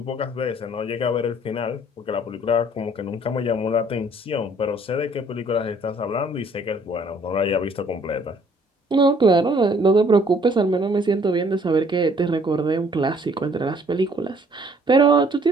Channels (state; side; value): normal; both; correlation 0.60